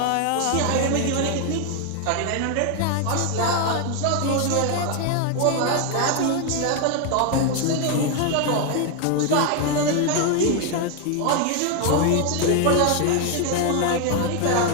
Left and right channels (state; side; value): different; both; correlation 0.01